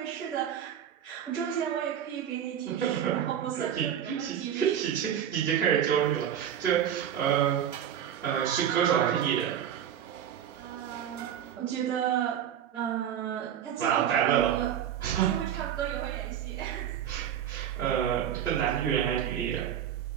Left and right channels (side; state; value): left; quieter; 9.7 dB